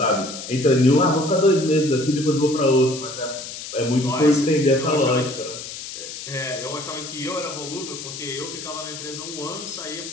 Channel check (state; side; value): noise; left; hiss, 10 dB below the sound